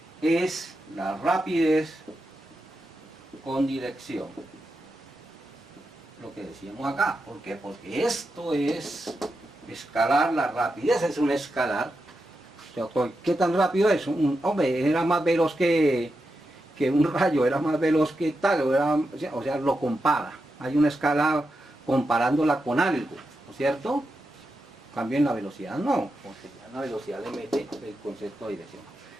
es la rapidez con dirección. Lo que decíamos acá. ¿Por qué? Porque esto es escalar, la rapidez es un escalar. O sea, ¿qué tan rápido es? Hombre, era más veloz que un rayo, era más veloz que tal, o sea, lo compara. Hay una escala comparándola con algo, ¿no es cierto? Cambio en la velocidad no, porque ya en la velocidad le mete el concepto de dirección.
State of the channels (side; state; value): both; normal; correlation 0.88